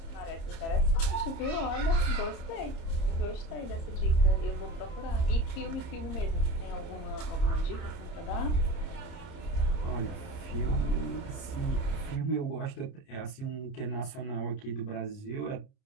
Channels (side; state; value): right; late; 30 ms